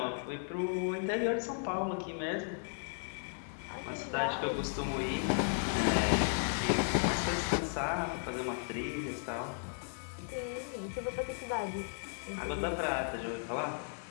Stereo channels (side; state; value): right; silent; digital silence